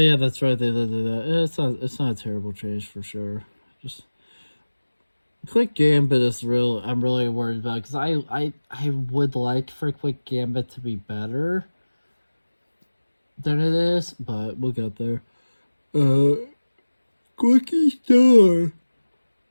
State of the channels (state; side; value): inverted; both; correlation -1.00